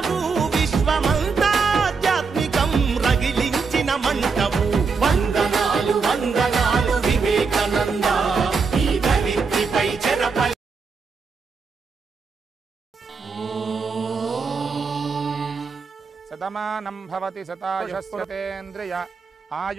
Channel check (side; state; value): left; quieter; 5.0 dB